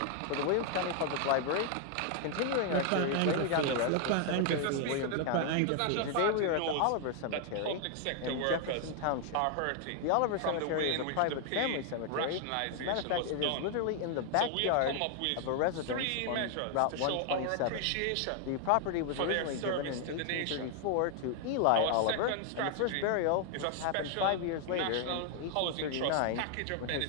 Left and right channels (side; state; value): both; different; correlation 0.00